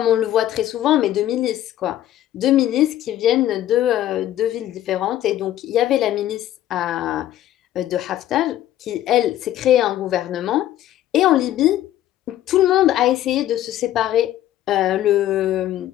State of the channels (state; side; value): quieter; right; 12.8 dB